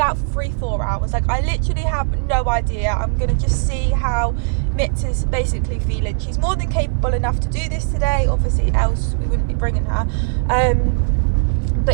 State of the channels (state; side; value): silent; left; 60 dB below the other